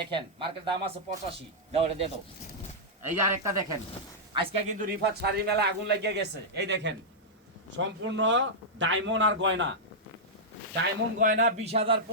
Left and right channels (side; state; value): both; normal; correlation -0.09